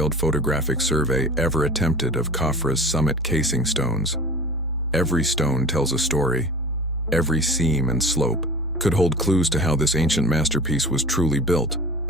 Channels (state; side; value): normal; both; correlation 0.39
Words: photographic survey ever attempted of Khafre's summit casing stones. Every stone tells a story, every seam and slope, could hold clues to how this ancient masterpiece was truly built.